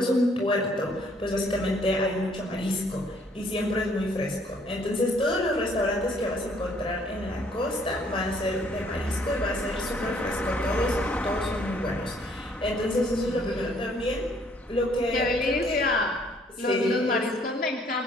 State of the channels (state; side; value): normal; both; correlation 0.63